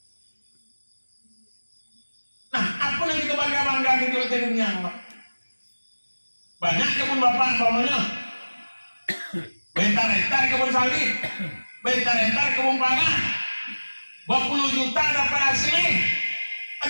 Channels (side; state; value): both; inverted; correlation -1.00